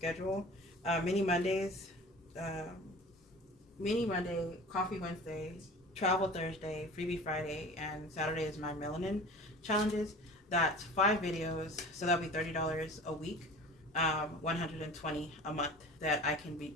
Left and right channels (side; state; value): both; normal; correlation 0.40